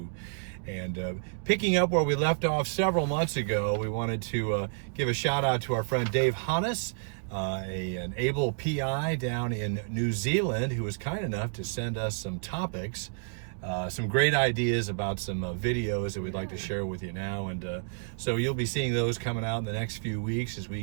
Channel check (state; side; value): silent; left; 58 dB below the other